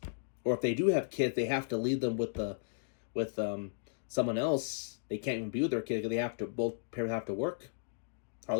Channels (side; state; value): right; silent; digital silence